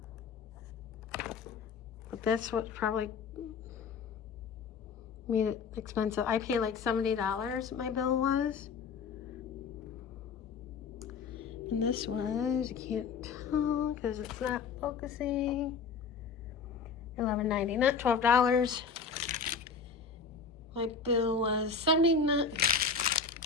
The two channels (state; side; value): quieter; right; 5.4 dB